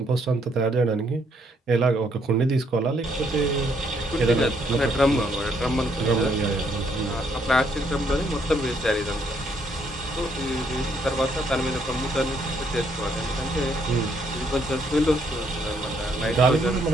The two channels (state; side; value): normal; both; correlation 0.71